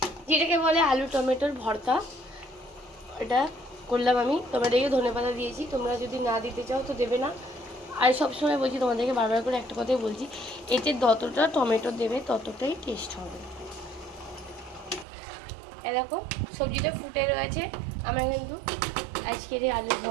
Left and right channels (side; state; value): left; drops out; at 15.1 s